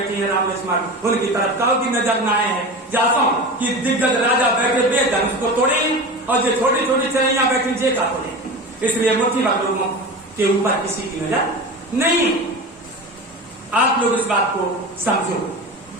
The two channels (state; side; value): normal; both; correlation 0.29